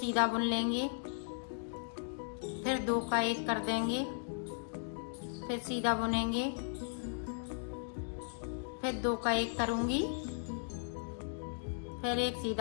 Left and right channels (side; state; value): right; silent; digital silence